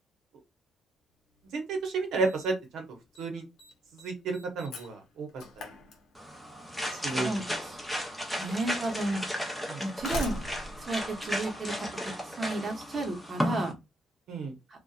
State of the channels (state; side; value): normal; both; correlation 0.77